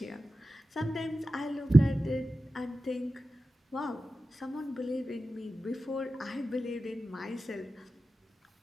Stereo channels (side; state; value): both; normal; correlation 0.94